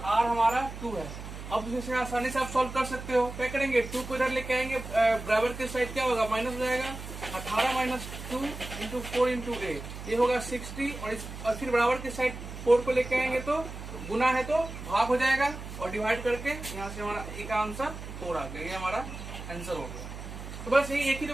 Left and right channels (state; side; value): noise; right; hum, 10 dB below the sound